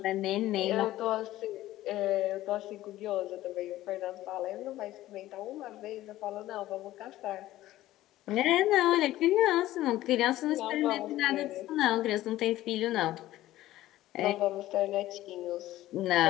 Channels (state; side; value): quieter; right; 15.2 dB